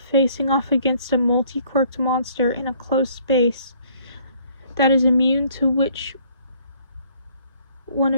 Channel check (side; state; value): both; inverted; correlation -0.61